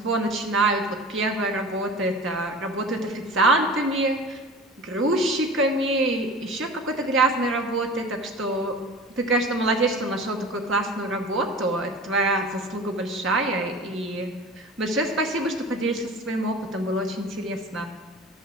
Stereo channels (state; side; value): normal; both; correlation 0.38